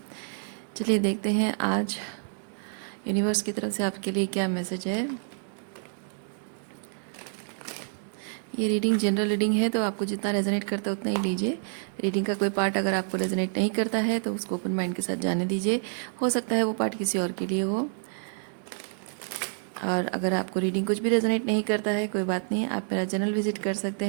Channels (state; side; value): silent; left; digital silence